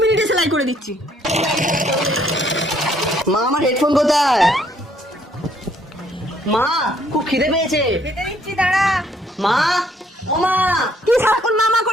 মিনিটে সেলাই করে দিচ্ছি। মা, আমার হেডফোন কোথায়? মা, খুব খিদে পেয়েছে। খেতে দিচ্ছি, দাঁড়া। মা, ও মা। তুই সারাক্ষণ মামা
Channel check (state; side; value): normal; both; correlation 0.66